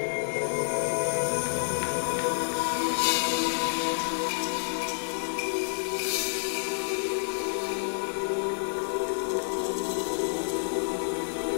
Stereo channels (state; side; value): silent; right; 59 dB below the other